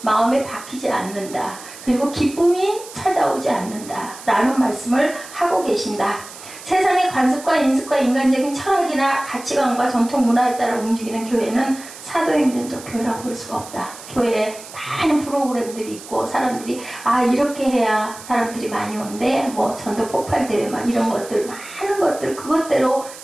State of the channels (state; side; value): noise; right; hiss, 16 dB below the sound